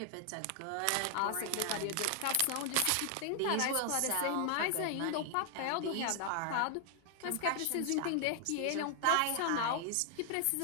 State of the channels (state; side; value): different; both; correlation 0.00